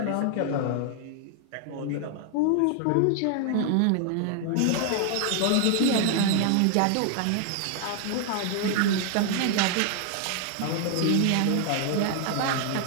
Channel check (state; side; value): different; both; correlation 0.00